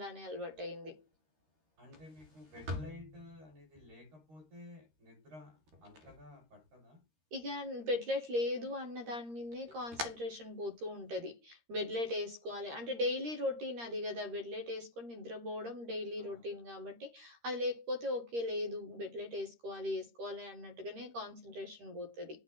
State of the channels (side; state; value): left; late; 13 ms